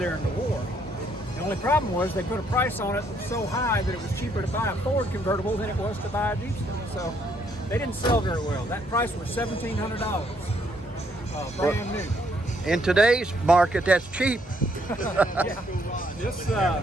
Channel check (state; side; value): normal; both; correlation 0.70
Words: in the war. The only problem was they put a price on it so high that it was cheaper to buy a Ford convertible than it was to buy a Jeepster. So they didn't sell very well. That price was $1,700, brand new. In today's market, that's cheap. Yeah. This